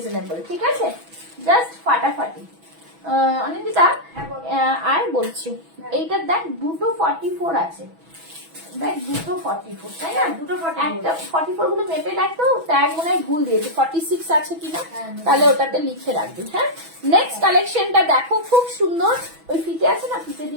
ঠিক আছে, জাস্ট ফাটাফাটি। অনিন্দিতা, আর বলছি, এইটার দেখ দুটো 44 আছে, দেখ দুটো 44, তাই না? দুটো 44 গুলো মেপে দেখতো, ট্যাগ মনে হয় ভুল দিয়েছে, 46 আছে কিনা, তাহলে ওটাতে লিখে রাখবি। হ্যাঁ, নেক্সট কালেকশনটা দেখো, খুব সুন্দর। ওই ফিতে আছে না, ফিতে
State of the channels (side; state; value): left; late; 6.1 ms